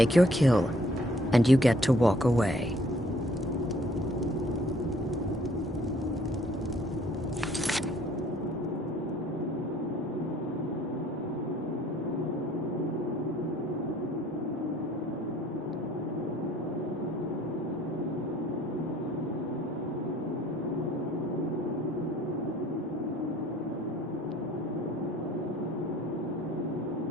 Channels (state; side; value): normal; both; correlation 0.58